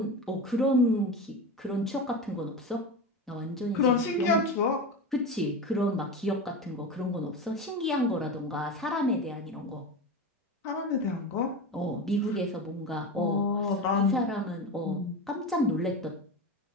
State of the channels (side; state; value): both; normal; correlation 0.24